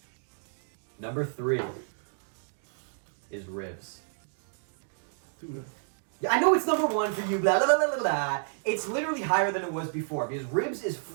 Number 3 is Ribs. Dude. Yeah, I know it's number 1 for you, blah, blah, blah, blah, blah. It's literally higher than it was before, because Ribs is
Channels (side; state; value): left; silent; digital silence